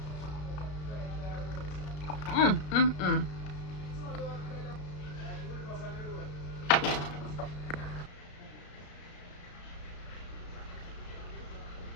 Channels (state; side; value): late; right; 33 ms